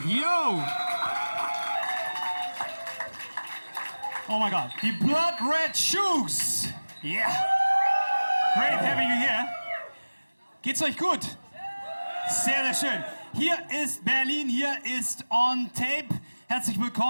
Yo! Oh my God, die Blood Red Shoes! Yeah! Great having you here. Geht's euch gut? Sehr, sehr schön. Hier ist Berlin, hier ist On Tape. Herzlich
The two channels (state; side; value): inverted; both; correlation -1.00